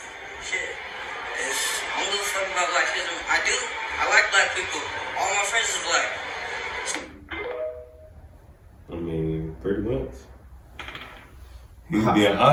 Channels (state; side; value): identical; both; correlation 1.00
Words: Shit. I don't give a fuck about blackism. I do. I like black people. All my friends is black. I mean, pretty much. He's being